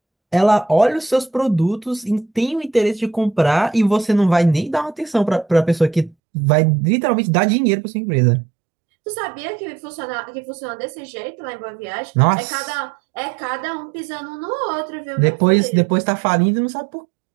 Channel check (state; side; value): drops out; left; at 6.2 s